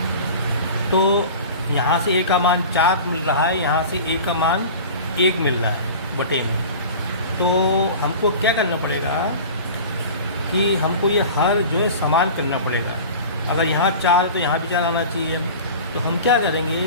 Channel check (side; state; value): both; inverted; correlation -0.37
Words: तो यहाँ से a का मान 4 मिल रहा है, यहाँ से a का मान 1 मिल रहा है बटे में। तो हमको क्या करना पड़ेगा कि हमको ये हर जो है समान करना पड़ेगा। अगर यहाँ 4 तो यहाँ भी 4 आना चाहिए। तो हम क्या करेंगे,